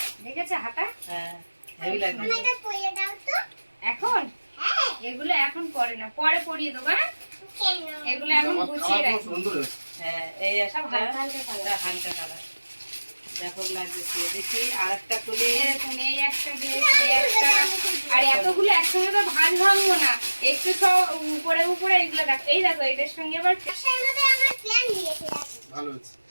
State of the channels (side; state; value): both; inverted; correlation -1.00